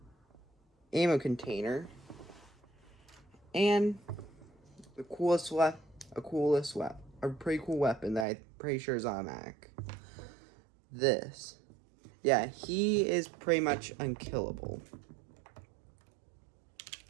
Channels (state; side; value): drops out; left; at 8.2 s